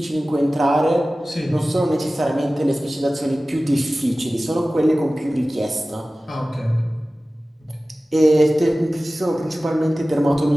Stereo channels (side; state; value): both; normal; correlation 0.97